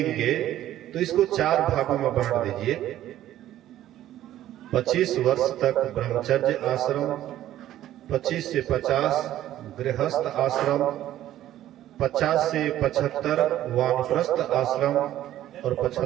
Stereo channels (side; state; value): left; quieter; 13.0 dB